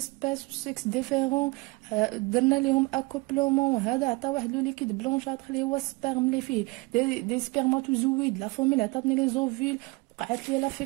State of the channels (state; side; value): quieter; left; 25.1 dB